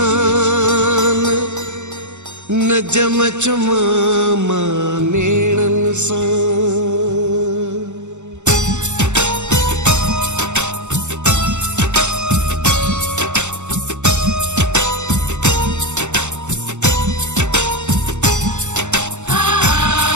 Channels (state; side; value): late; left; 0.84 ms